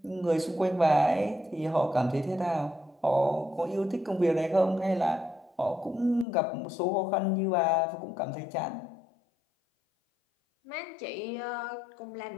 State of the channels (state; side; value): drops out; right; at 6.2 s